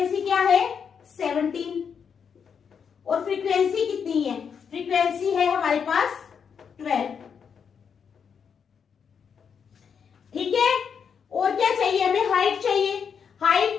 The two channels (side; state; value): right; quieter; 6.8 dB